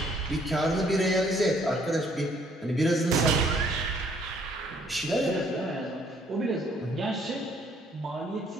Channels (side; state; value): both; normal; correlation 0.64